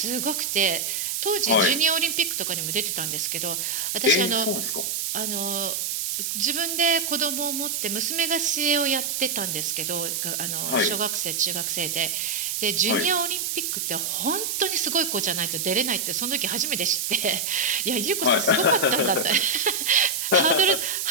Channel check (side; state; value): right; noise; hiss, 1 dB below the sound